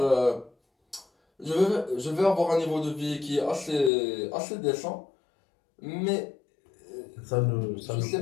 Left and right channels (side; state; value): right; drops out; at 3.9 s